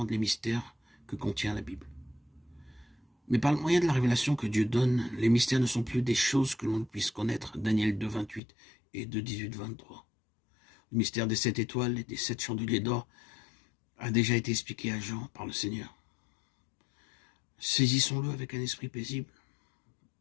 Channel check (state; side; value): drops out; right; at 8.4 s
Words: les mystères que contient la Bible. Mais par le moyen de la révélation que Dieu donne, les mystères ne sont plus des choses que l'on puisse connaître. Daniel 2, 28 et 2, 18, 23. Le mystère des 7 étoiles et des 7 chandeliers d'or a déjà été expliqué à Jean par le Seigneur. Saisissons-le avec un esprit paisible.